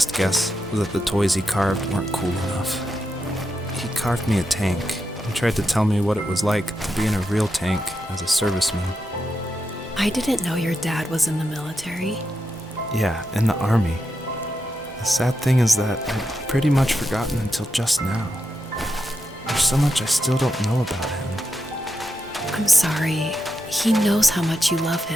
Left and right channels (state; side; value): normal; both; correlation 0.86